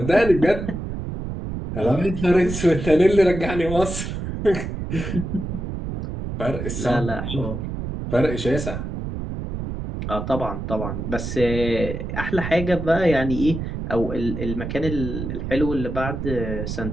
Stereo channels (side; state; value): right; noise; rumble, 5 dB below the sound